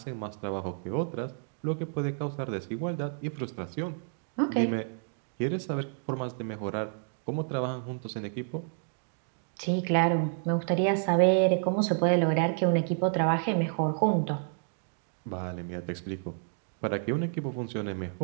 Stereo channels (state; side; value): silent; left; 58 dB below the other